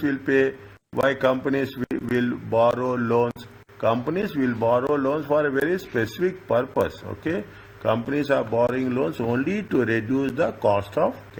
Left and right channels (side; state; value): both; identical; correlation 1.00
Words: will pay, why companies will borrow loans. Companies will borrow loans for a very specific purpose. Okay, companies are borrowing loans only to reduce the cost of